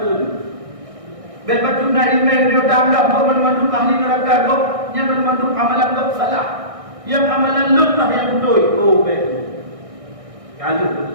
itu. Bebat juga ilmu yang dia anggap kau memandu ahli neraka kau, yang memandu amalan kau salah, yang amalan lemah yang betul. Oh betul. Kalau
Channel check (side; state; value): left; late; 1.6 ms